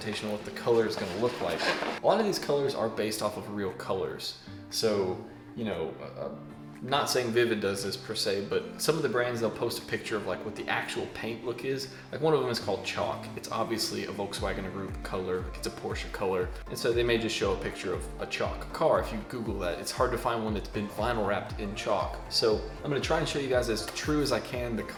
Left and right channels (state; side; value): identical; both; correlation 1.00